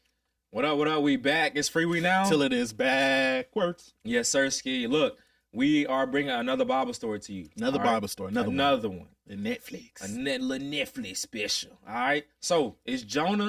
What up, what up? We back. It's Freewenow. Till it is backwards. Yes, sir, Ski. Look, we are bringing another Bible story to you. Another Bible story. Another one. The Netflix. A little Netflix special. All right. So it's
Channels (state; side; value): identical; both; correlation 1.00